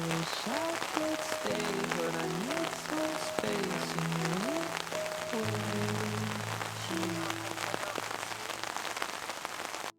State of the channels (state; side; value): identical; both; correlation 1.00